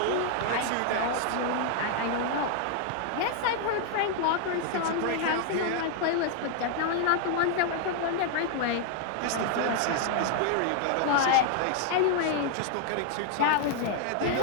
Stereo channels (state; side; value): different; both; correlation 0.00